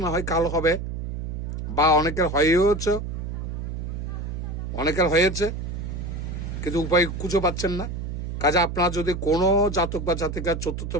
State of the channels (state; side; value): noise; right; hum, 5 dB below the sound